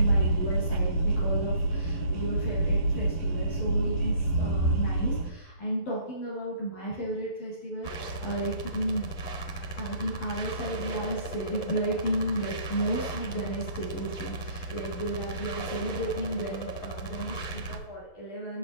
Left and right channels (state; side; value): late; right; 11 ms